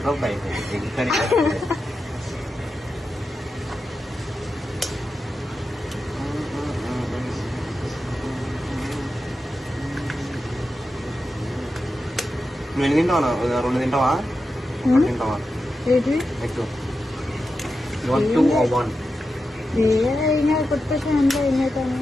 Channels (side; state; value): both; normal; correlation 0.90